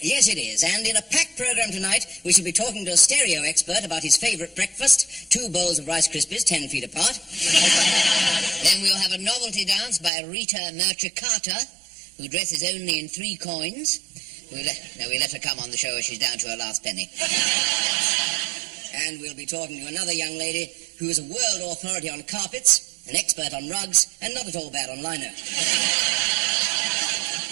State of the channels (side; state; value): left; drops out; at 10.1 s